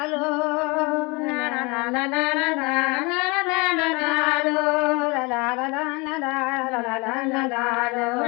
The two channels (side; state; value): right; quieter; 27.5 dB